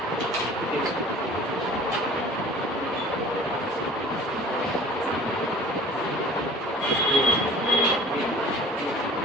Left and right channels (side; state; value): both; normal; correlation 0.46